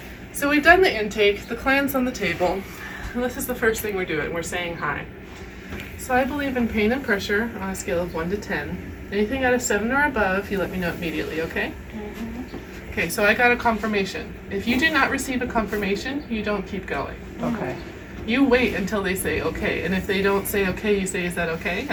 So we've done the intake, the clan's on the table, and this is the first thing we're doing. We're saying hi. So I believe in pain and pressure on a scale of 1 to 10. Anything out of 7 or above, you let me know immediately, okay? Okay, so I got a confirmation. If you do not receive a confirmation, you don't keep going. Okay. You wait until they say okay, and if they don't say okay, you say, is that okay?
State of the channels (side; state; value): both; identical; correlation 1.00